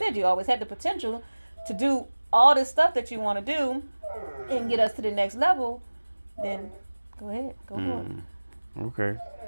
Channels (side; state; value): both; inverted; correlation -1.00